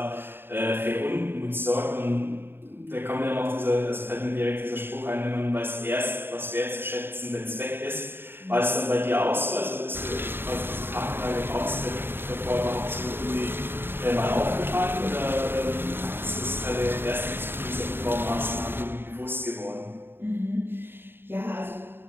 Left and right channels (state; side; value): late; left; 0.10 ms